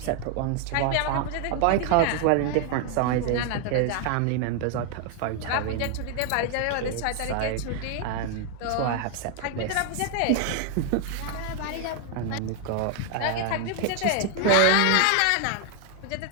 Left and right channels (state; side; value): different; both; correlation 0.00